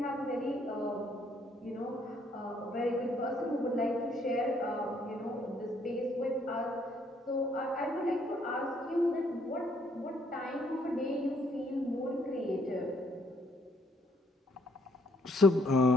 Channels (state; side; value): normal; both; correlation 0.68